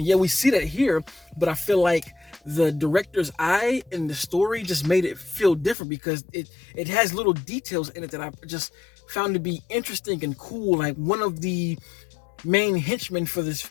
yeah, we see that here, but I feel like the director's eye and the story just made it feel different, because it has little details in it that I just found to be interesting and cool. Like, one of the main henchmen for this,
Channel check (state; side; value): drops out; right; at 5.8 s